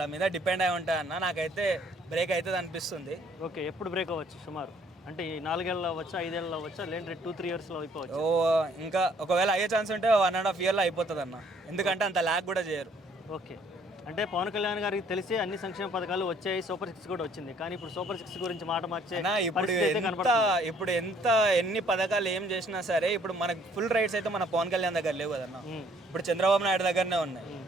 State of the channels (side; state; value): both; normal; correlation 0.61